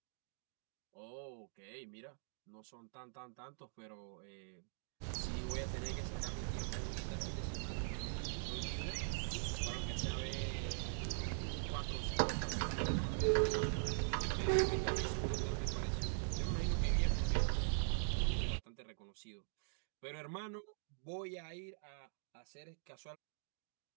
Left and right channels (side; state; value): left; silent; digital silence